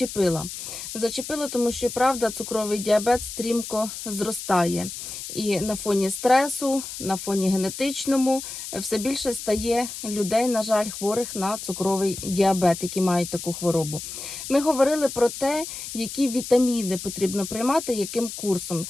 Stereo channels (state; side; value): noise; left; hiss, 9 dB below the sound